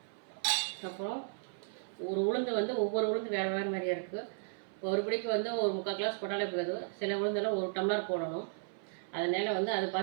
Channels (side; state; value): left; silent; 55 dB below the other